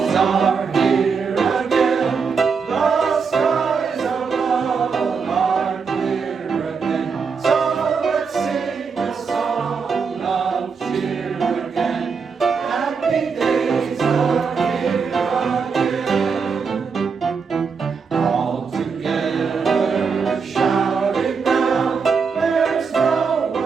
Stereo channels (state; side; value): quieter; left; 5.5 dB